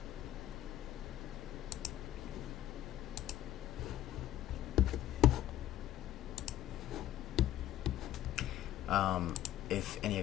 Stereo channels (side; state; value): right; quieter; 13.0 dB